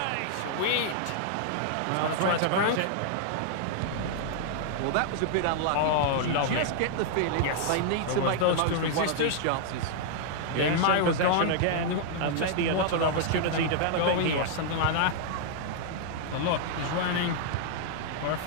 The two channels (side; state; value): both; different; correlation -0.01